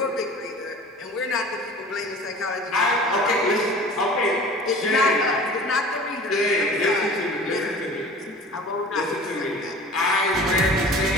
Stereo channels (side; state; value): both; normal; correlation 0.42